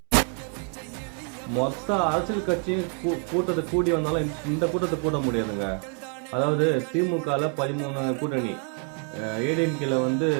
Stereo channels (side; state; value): left; quieter; 38.9 dB